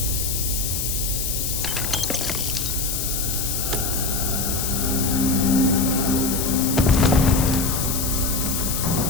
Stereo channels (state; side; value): noise; left; hiss, 2 dB below the sound